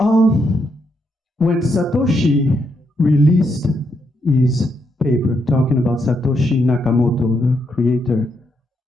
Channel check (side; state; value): both; normal; correlation 0.79